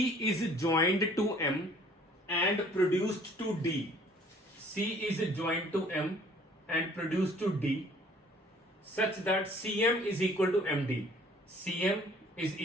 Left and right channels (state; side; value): normal; both; correlation 0.56